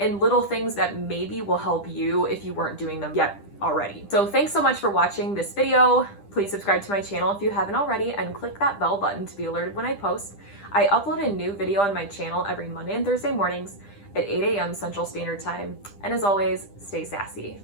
little things that maybe will help you if you weren't doing them yet already. So thanks so much for watching this video. Please subscribe to my channel if you haven't already, and click that bell button to be alerted when I post. I upload a new video on my channel every Monday and Thursday mornings at 8 a.m. Central Standard Time. And as always, stay sassy.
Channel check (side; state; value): right; late; 10 ms